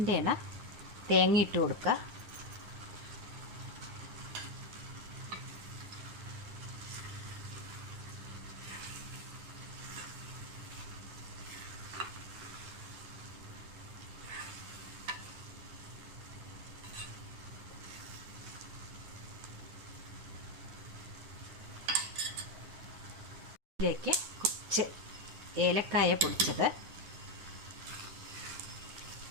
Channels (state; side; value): late; left; 10 ms